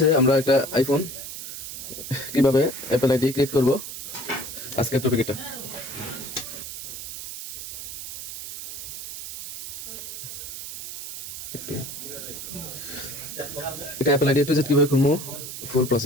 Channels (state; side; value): noise; right; hiss, 9 dB below the sound